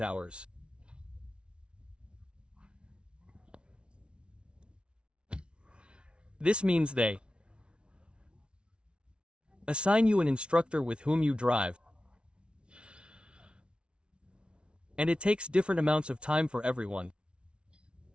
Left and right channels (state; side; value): late; left; 0.058 ms